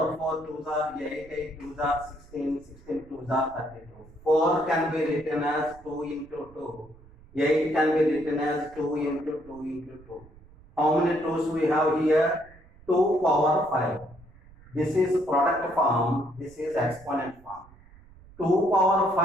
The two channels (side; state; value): right; noise; rumble, 24 dB below the sound